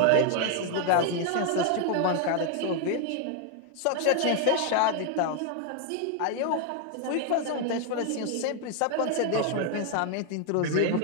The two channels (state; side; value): different; both; correlation 0.00